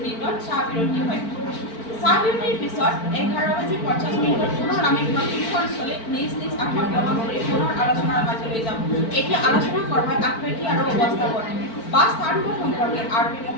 চাহ বিৰতি হয়। চাহ বিৰতিৰ পিছত 11:50 পুনৰ আমি প্ৰশিক্ষণস্থলীত নিজ নিজ আসন গ্ৰহণ কৰি পুনৰ আলোচনাৰ মাজলৈ যাম। এতিয়া আলোচনা কৰা হয় আকৃতি আৰু অৱস্থাপন বা স্থানবোৰ সম্পৰ্কে। আৰ.পি.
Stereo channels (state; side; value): late; right; 4.4 ms